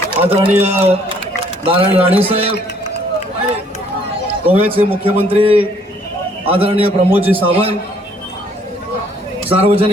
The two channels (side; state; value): both; normal; correlation 0.63